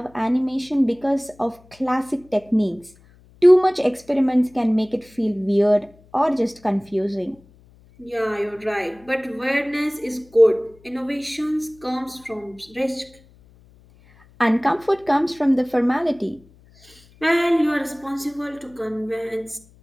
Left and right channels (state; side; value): noise; left; hum, 28 dB below the sound